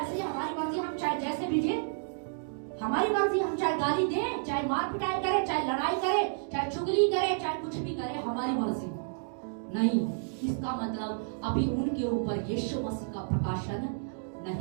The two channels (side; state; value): left; silent; digital silence